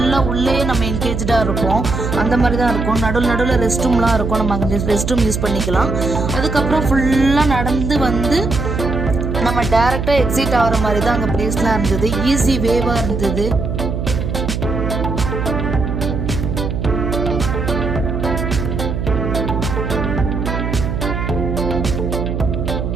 உள்ளே நம்ம என்கேஜாக இருப்போம். அந்த மாதிரி தான் இருக்கும். நடுவில் ரெஸ்ட் ரூம்லாம் இருக்கும். நம்ம அங்கே ரெஸ்ட் ரூம் யூஸ் பண்ணிக்கலாம். அதுக்கப்புறம் ஃபுல்லாக நடந்து வந்து நம்ம டேரெக்டாக எக்ஸிட் ஆகிற மாதிரி தான் அங்கே பிளேஸ்லாம் இருந்தது. ஈஸி வேவாக இருந்தது.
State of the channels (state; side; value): noise; right; hum, 2 dB below the sound